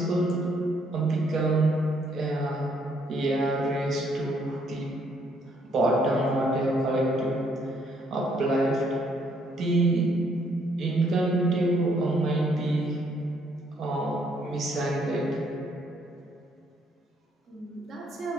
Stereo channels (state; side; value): normal; both; correlation 0.69